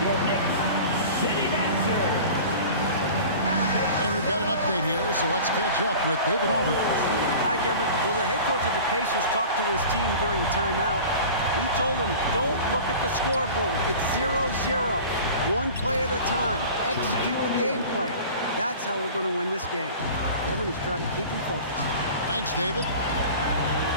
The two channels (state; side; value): inverted; both; correlation -0.39